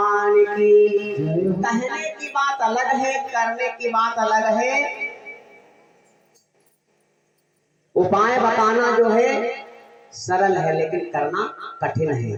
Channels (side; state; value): both; identical; correlation 1.00